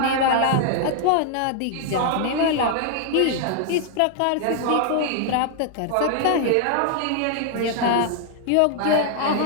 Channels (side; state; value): both; different; correlation 0.00